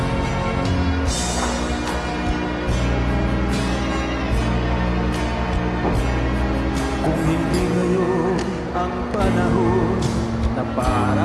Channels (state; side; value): identical; both; correlation 1.00